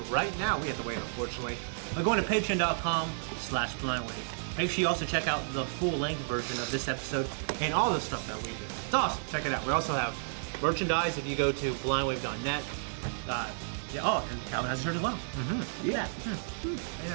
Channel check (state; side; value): silent; left; digital silence